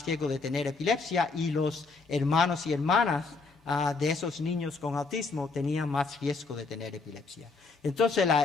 riesgo de tener epilepsia y los hermanos y hermanas de esos niños con autismo tenían más riesgo de tener epilepsia. Entonces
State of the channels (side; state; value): right; quieter; 4.1 dB